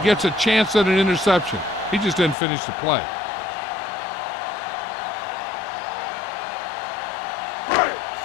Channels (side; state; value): right; drops out; at 2.4 s